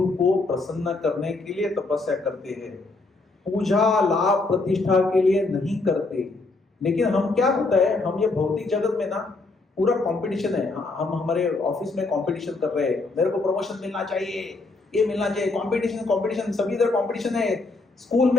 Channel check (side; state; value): right; quieter; 3.5 dB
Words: को प्रसन्न करने के लिए तपस्या करते हैं। पूजा लाभ प्रतिष्ठा के लिए नहीं करते। लेकिन हम क्या होता है, हम ये भौतिक जगत में ना पूरा कंपटीशन है। हम हमारे ऑफिस में कंपटीशन कर रहे हैं, मेरे को प्रमोशन मिलना चाहिए, ये मिलना चाहिए, कंपटीशन कंपटीशन, सभी इधर कंपटीशन है। स्कूल